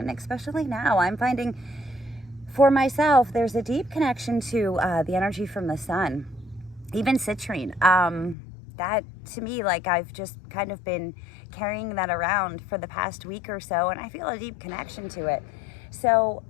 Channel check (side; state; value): right; drops out; at 8.3 s